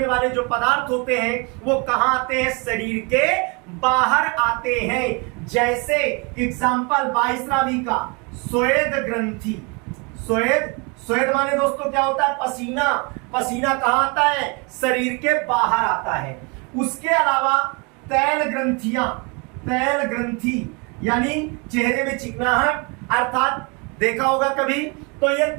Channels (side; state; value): left; quieter; 31.4 dB